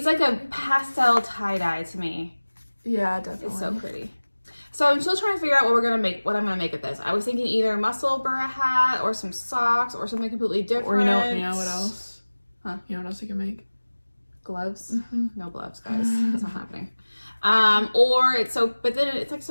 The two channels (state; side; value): inverted; both; correlation -1.00